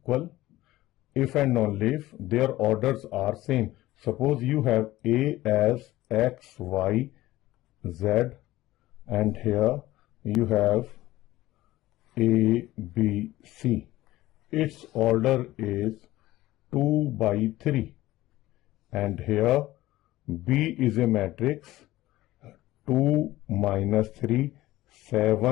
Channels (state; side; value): quieter; right; 16.6 dB